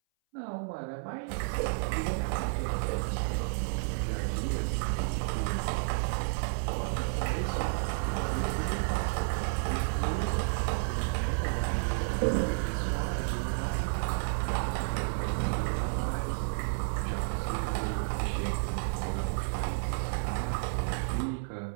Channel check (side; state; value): left; silent; 57 dB below the other